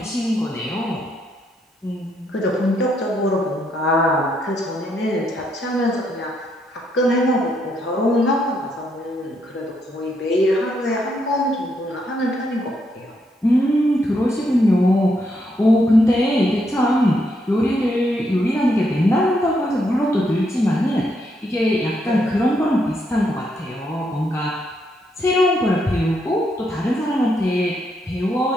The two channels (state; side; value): normal; both; correlation 0.77